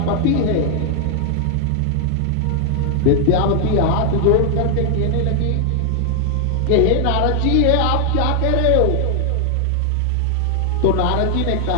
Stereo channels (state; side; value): different; both; correlation 0.00